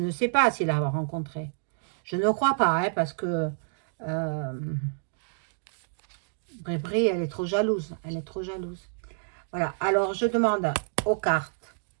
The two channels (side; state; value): left; silent; digital silence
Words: sais pas s'il l'a rencontré. Je ne crois pas, hein, parce que Brébré, elle est trop jalouse. Elle est trop jalouse. Voilà, alors je demande aux cartes